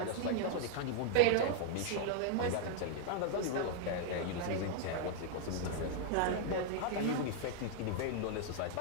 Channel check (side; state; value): both; different; correlation 0.00